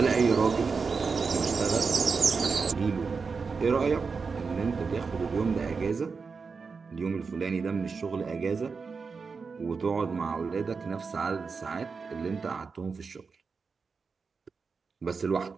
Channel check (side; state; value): left; quieter; 5.0 dB